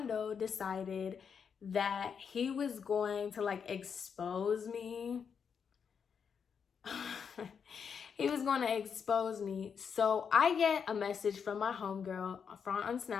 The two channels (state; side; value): quieter; right; 6.7 dB